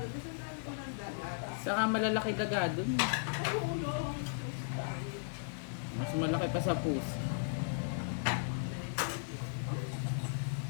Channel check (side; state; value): right; silent; digital silence